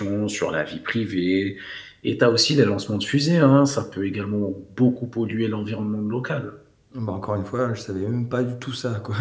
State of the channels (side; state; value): both; identical; correlation 1.00